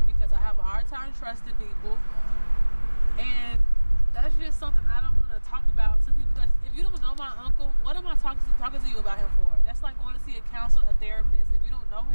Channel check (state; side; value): inverted; both; correlation -1.00